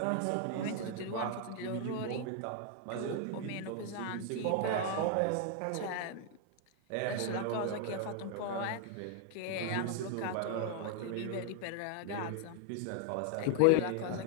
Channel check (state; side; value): different; both; correlation 0.00